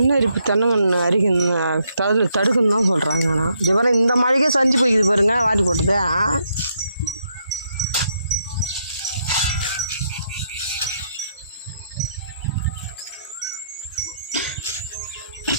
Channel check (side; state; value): both; inverted; correlation -0.76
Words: அரிப்பு தென்னங்கன்று அரிக்கணும் தடுக்குன்னு தான் சொல்கிறாங்க. ஆனால் இது பாருங்க, இந்த மழைக்கே சஞ்சு போய்க்குது பாருங்க, வாரி போட்டது.